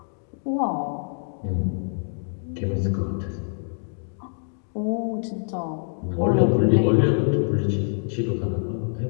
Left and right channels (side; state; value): right; silent; digital silence